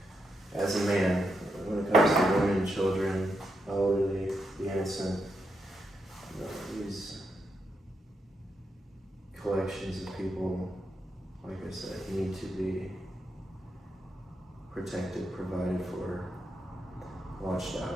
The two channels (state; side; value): normal; both; correlation 0.83